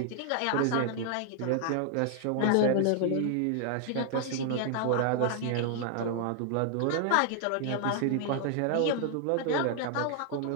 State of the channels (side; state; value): both; different; correlation 0.00